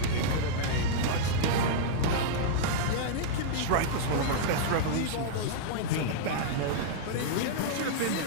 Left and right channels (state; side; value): different; both; correlation -0.02